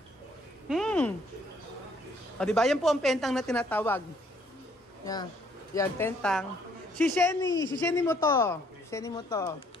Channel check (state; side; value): normal; both; correlation 0.65